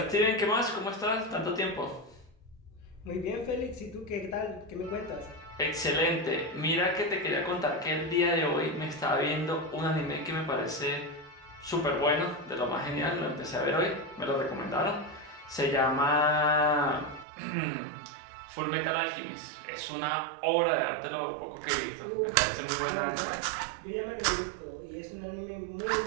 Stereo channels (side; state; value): left; drops out; at 17.2 s